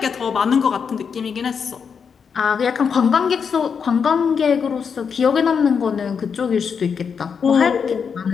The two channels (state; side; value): quieter; right; 6.4 dB